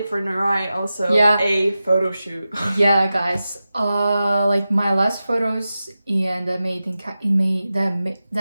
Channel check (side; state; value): both; inverted; correlation -0.93